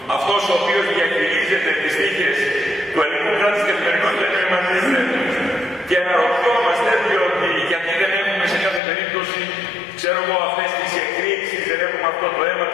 Αυτός ο οποίος διαχειρίζεται τις τύχες του ελληνικού κράτους στην καθημερινότητα είναι ο Εμμανουήλ Ρέπουλης. Και αναρωτιόμαστε διότι γιατί δεν έχουμε σε κάθε περίπτωση, ξέρω εγώ, αυτές τις εκρήξεις, δεν έχουμε αυτό το αίμα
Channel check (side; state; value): right; drops out; at 8.8 s